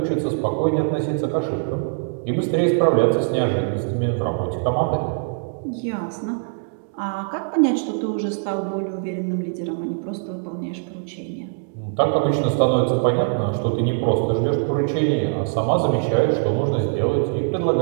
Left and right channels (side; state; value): left; silent; digital silence